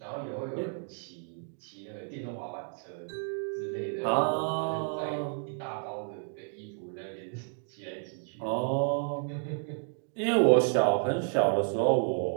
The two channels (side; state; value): left; silent; 57 dB below the other